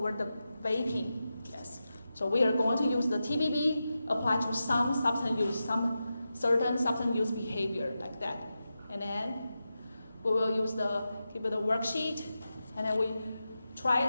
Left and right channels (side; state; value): both; inverted; correlation -0.91